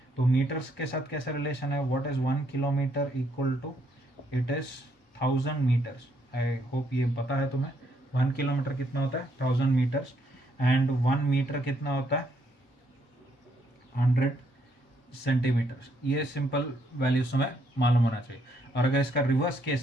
तो मीटर्स के साथ कैसा रिलेशन है? What is 1 kilometer equal to? It is 1000 meters. I hope ये पता है तुम्हें. 1 किलोमीटर कितना होता है? 1000 मीटर्स. एंड 1 मीटर कितना होता है? 100 सेंटीमीटर्स. ये सिंपल वैल्यूज तुम्हें मालूम होना चाहिए. और अगर इसका रिवर्स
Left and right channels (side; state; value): both; normal; correlation 0.72